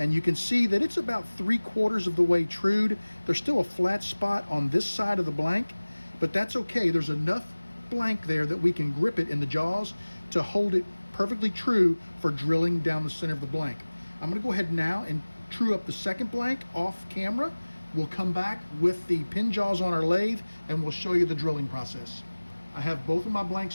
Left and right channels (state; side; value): inverted; both; correlation -1.00